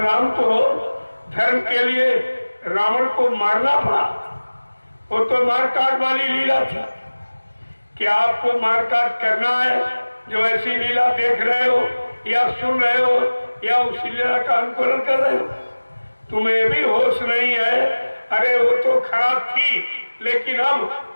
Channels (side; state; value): both; inverted; correlation -1.00